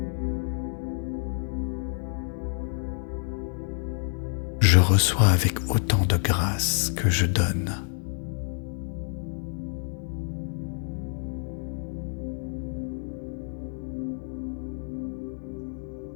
Je reçois avec autant de grâce que je donne.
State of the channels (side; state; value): right; silent; 59 dB below the other